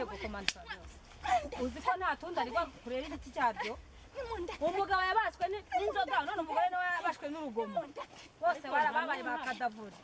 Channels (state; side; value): identical; both; correlation 1.00